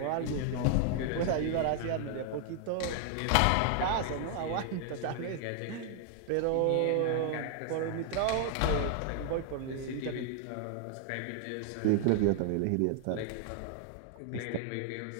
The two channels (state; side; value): different; both; correlation 0.00